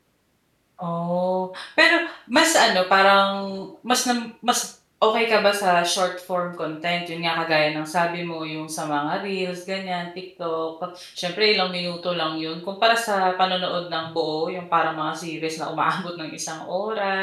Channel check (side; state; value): both; identical; correlation 1.00